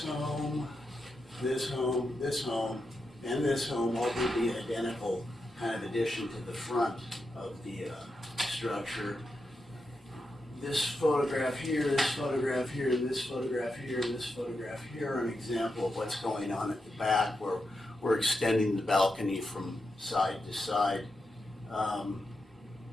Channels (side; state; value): both; normal; correlation 0.87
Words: home, this home, this home, and this home all would be identical kind of addition to the front of the structure. This photograph here, this photograph here, this photograph here, this photograph here are an example of what's going on at the back, where we're extending the balcony from side to side.